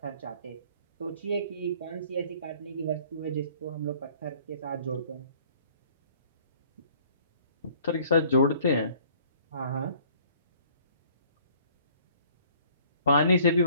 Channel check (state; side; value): inverted; both; correlation -0.56